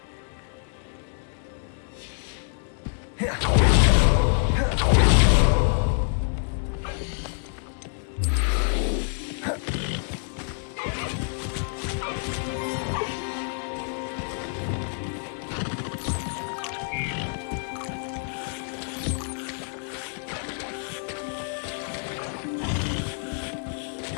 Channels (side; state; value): right; silent; 60 dB below the other